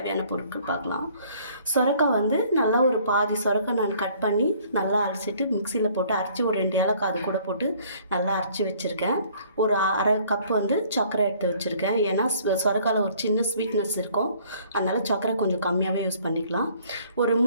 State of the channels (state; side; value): inverted; both; correlation -0.58